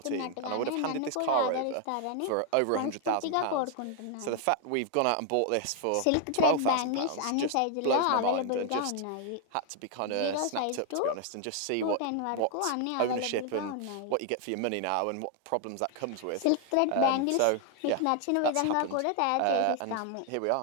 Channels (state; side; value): different; both; correlation 0.00